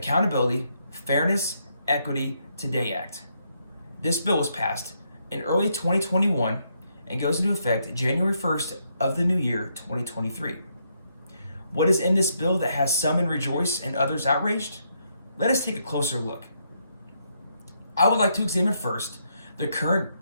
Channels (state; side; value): inverted; both; correlation -0.76